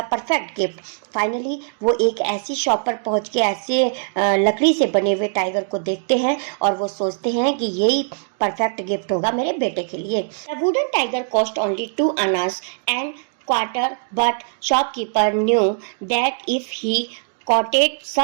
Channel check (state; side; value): silent; left; digital silence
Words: perfect gift. Finally वो एक ऐसी शॉप पर पहुंच के ऐसे लकड़ी से बने हुए टाइगर को देखते हैं और वो सोचते हैं कि यही परफेक्ट गिफ्ट होगा मेरे बेटे के लिए। The wooden tiger cost only 2 annas and quarter, but shopkeeper knew that if he quoted